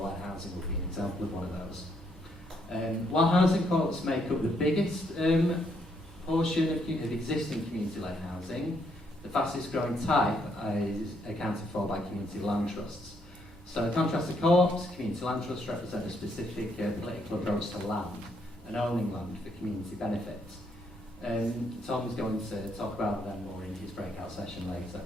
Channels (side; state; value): both; normal; correlation 0.73